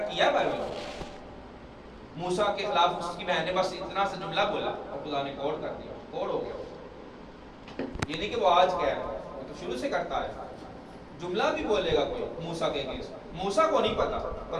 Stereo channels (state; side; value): identical; both; correlation 1.00